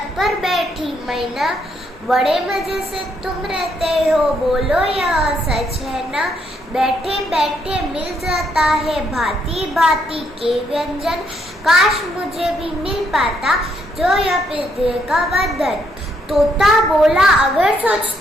पर बैठी मैना, बड़े मजे से तुम रहते हो, बोलो यह सच है ना। बैठे बैठे मिल जाता है भांति भांति के व्यंजन, काश मुझे भी मिल पाता जो यह पिंजरे का बंधन। तोता बोला अगर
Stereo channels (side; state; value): both; normal; correlation 0.74